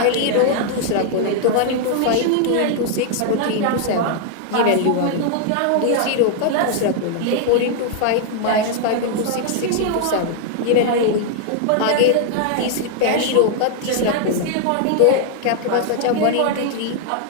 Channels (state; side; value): different; both; correlation 0.00